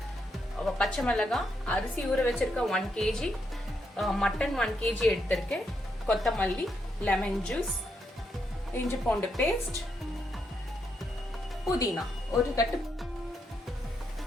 பச்சை மிளகாய், அரிசி ஊற வச்சிருக்க 1 kg, மட்டன் 1 kg எடுத்திருக்கேன், கொத்தமல்லி, லெமன் ஜூஸ், இஞ்சி பூண்டு பேஸ்ட், புதினா ஒரு கட்டு.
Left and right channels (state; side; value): normal; both; correlation 0.79